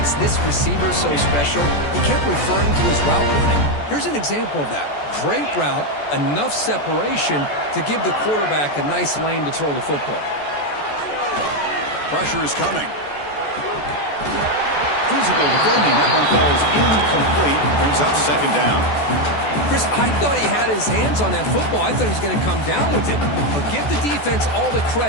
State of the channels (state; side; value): late; right; 14 ms